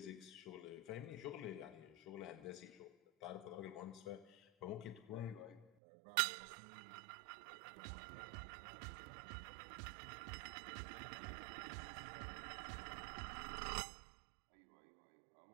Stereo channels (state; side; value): drops out; left; at 5.7 s